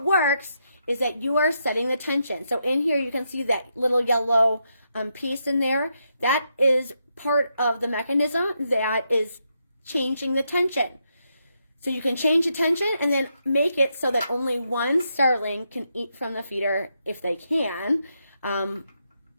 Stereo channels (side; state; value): both; inverted; correlation -0.81